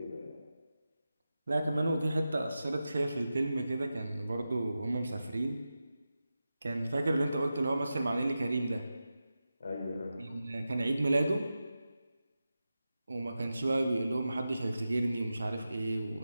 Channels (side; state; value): both; inverted; correlation -0.92